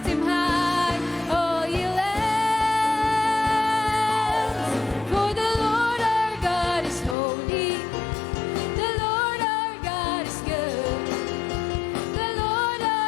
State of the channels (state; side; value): drops out; right; at 7.2 s